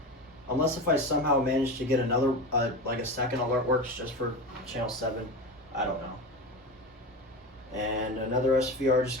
Unless if I somehow manage to get another, like a second AlertWorks just for channel 7, I don't know. And another SVR just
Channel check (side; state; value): both; normal; correlation 0.25